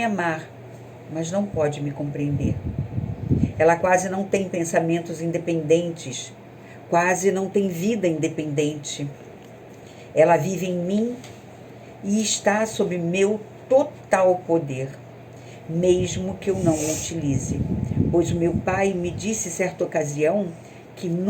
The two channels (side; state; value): both; identical; correlation 1.00